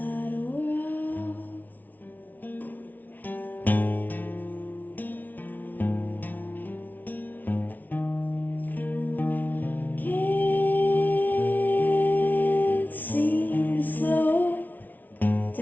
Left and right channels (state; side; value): late; right; 0.081 ms